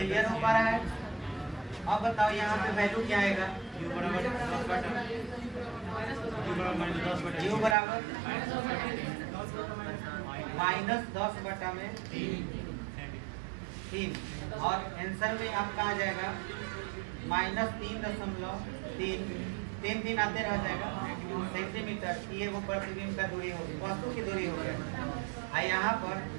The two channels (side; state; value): left; drops out; at 7.8 s